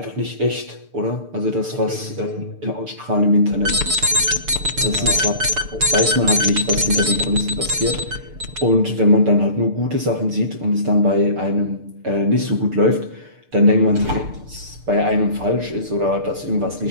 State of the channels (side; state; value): left; late; 6.7 ms